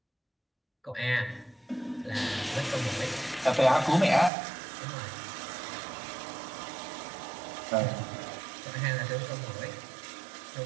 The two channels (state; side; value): drops out; left; at 4.3 s